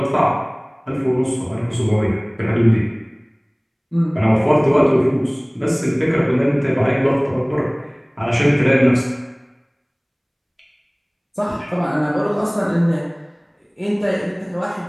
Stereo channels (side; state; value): both; identical; correlation 1.00